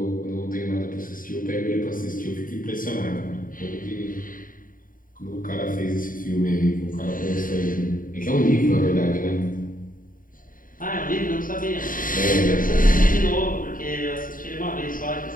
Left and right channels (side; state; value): right; late; 0.40 ms